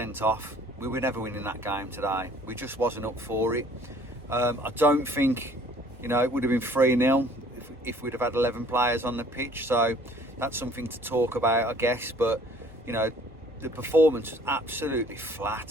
off, we were never winning that game today. We just wasn't up for it. I don't think, it would have been 3-0 if we'd have had 11 players on the pitch. So that's something to talk about, I guess. But, the performance was absolutely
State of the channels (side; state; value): both; normal; correlation 0.56